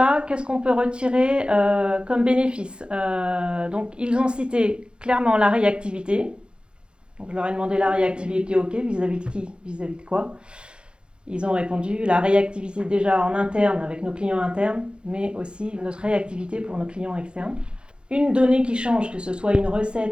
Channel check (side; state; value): left; late; 0.053 ms